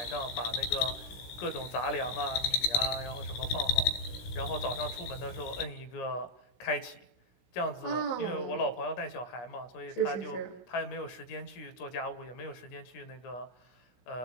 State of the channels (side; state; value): right; late; 16 ms